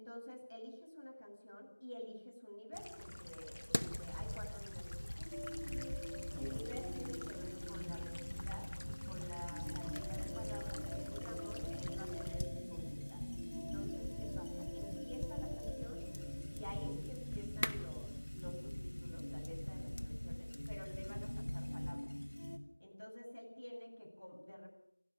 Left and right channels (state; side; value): inverted; both; correlation -1.00